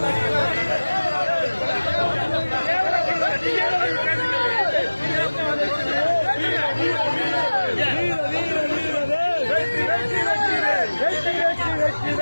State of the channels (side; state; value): both; inverted; correlation -1.00